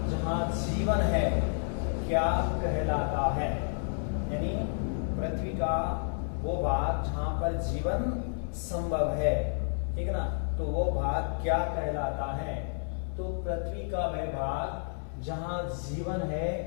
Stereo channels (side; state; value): right; silent; 57 dB below the other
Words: जहाँ जीवन है क्या कहलाता है। यानी पृथ्वी का वो भाग जहाँ पर जीवन संभव है, ठीक है ना, तो वो भाग क्या कहलाता है। तो पृथ्वी का वह भाग जहाँ जीवन है